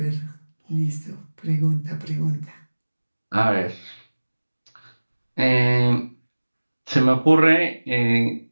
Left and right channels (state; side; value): inverted; both; correlation -1.00